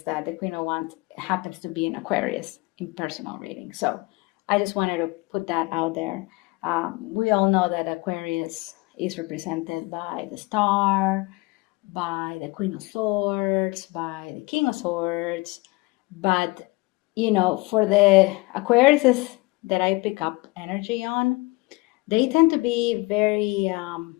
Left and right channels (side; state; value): right; quieter; 23.9 dB